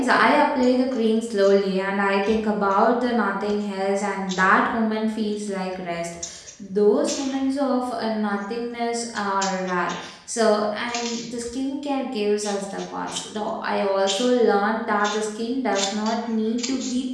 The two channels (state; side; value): identical; both; correlation 1.00